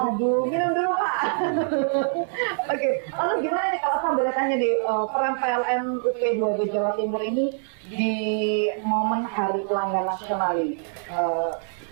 minum dulu Pak. Oke, lalu gimana nih kalau saya boleh tanya di peran PLN UP2B Jawa Timur ini di momen Hari Pelanggan Nasional ini?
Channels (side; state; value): left; silent; 62 dB below the other